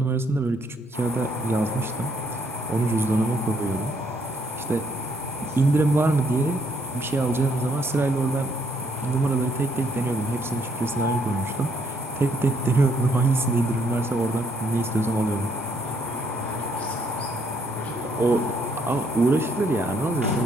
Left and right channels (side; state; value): both; normal; correlation 0.70